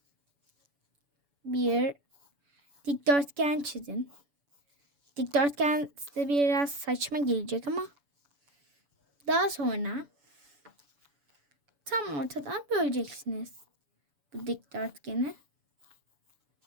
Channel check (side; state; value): left; late; 7.0 ms